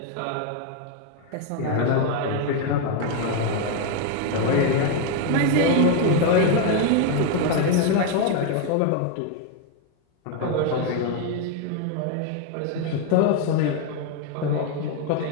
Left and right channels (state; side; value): different; both; correlation 0.01